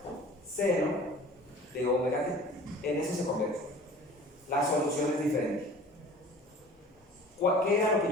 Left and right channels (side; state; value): both; normal; correlation 0.45